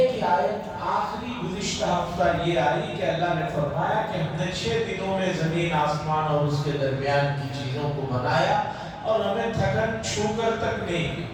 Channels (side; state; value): both; identical; correlation 1.00